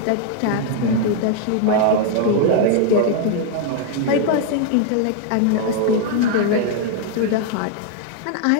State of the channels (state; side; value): different; both; correlation 0.00